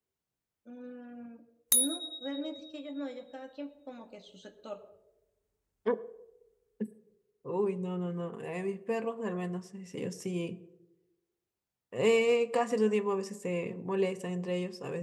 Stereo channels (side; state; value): both; identical; correlation 1.00